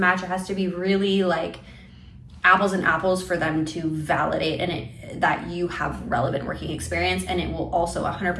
It has to be really like apples and apples for them to validate that you have relevant working experience. And it will also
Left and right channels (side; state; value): both; identical; correlation 1.00